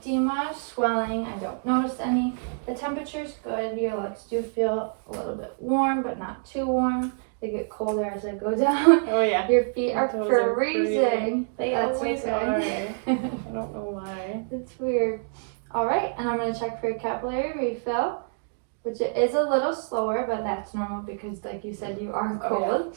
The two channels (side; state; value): left; silent; digital silence